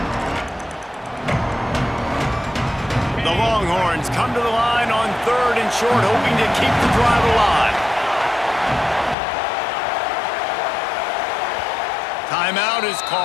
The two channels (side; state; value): right; drops out; at 9.2 s